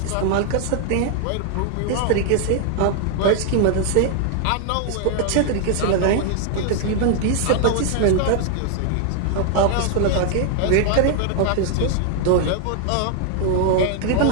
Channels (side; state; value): both; different; correlation 0.00